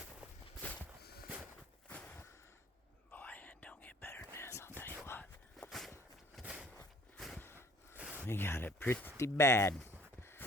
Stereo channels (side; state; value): both; normal; correlation 0.53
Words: We got it pretty bad.